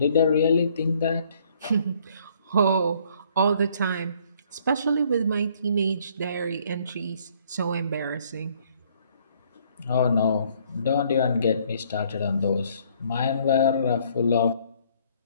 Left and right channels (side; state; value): both; inverted; correlation -0.63